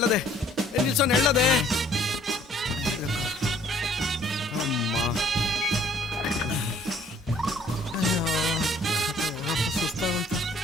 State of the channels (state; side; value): normal; both; correlation 0.59